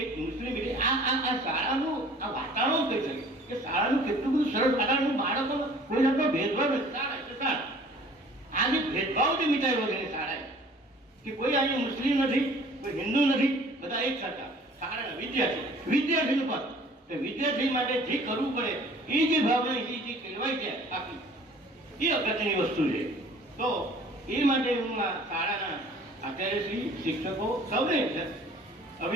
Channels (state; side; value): normal; both; correlation 0.50